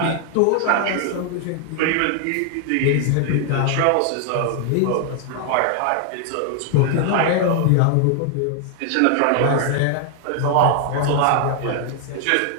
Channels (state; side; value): different; both; correlation 0.00